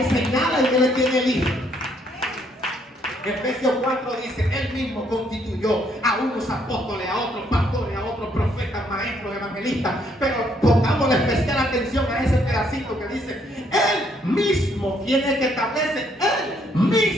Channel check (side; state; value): both; normal; correlation 0.69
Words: señala y Él es quien elige. Efesios 4 dice, Él mismo constituyó a unos apóstoles, a otros pastores, a otros profetas, maestros, evangelistas. Pero pongamos especial atención a ese pedacito que dice, Él mismo, quien es que establece, Él